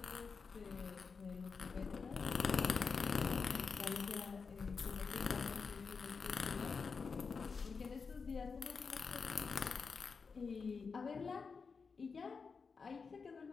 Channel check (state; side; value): quieter; right; 5.1 dB